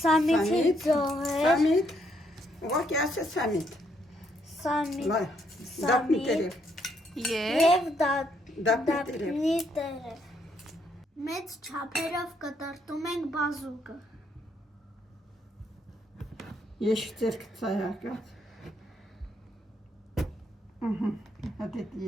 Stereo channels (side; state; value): both; normal; correlation 0.73